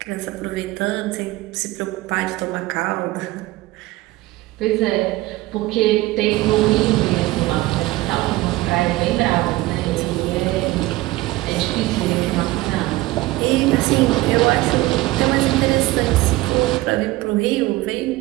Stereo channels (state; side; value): quieter; left; 18.7 dB